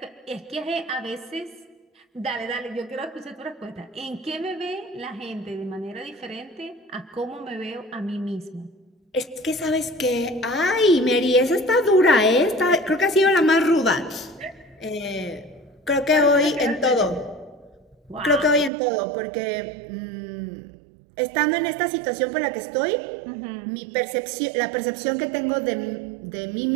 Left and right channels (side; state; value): left; drops out; at 18.7 s